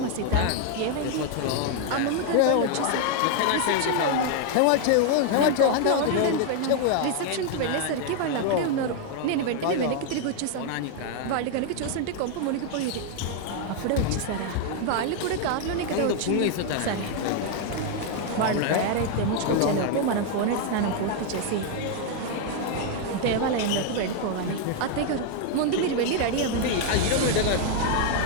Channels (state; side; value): different; both; correlation 0.00